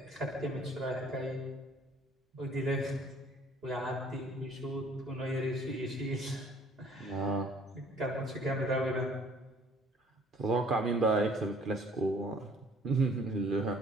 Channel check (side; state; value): both; normal; correlation 0.56